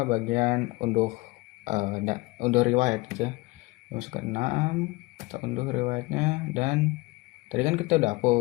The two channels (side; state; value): right; quieter; 22.7 dB